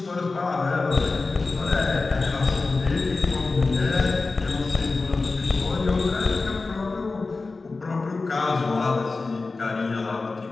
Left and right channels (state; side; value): quieter; right; 3.8 dB